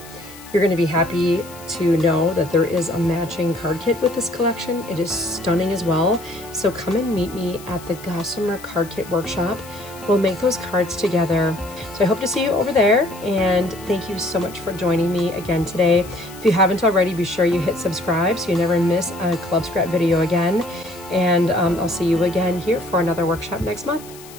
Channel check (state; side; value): noise; left; hiss, 19 dB below the sound